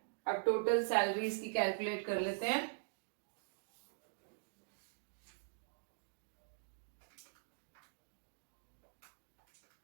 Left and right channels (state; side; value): silent; left; digital silence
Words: अब टोटल सैलरीज की कैलकुलेट कर लेते हैं।